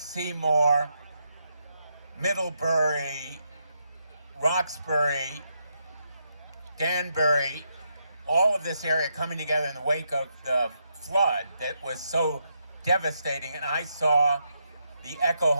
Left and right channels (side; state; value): both; inverted; correlation -0.80